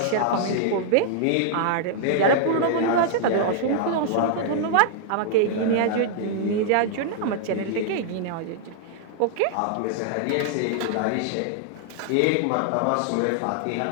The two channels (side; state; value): both; different; correlation -0.01